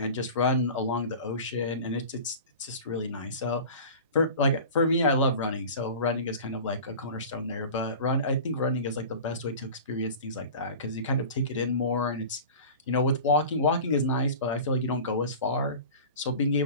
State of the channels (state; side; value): inverted; both; correlation -0.37